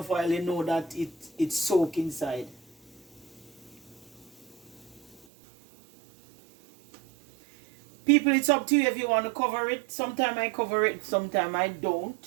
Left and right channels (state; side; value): drops out; left; at 5.2 s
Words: oil, you know that it's soaked inside. People, it's up to you if you want to cover it. Sometimes I cover it, sometimes I